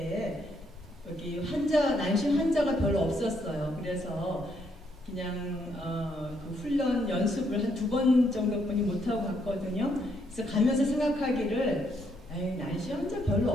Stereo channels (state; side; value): normal; both; correlation 0.73